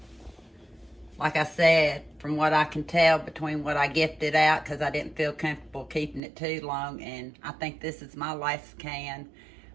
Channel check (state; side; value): drops out; left; at 6.2 s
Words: Like I said, from what I can tell between what I gifted out, because I didn't feel comfortable keeping it too long, and I think this is my last can.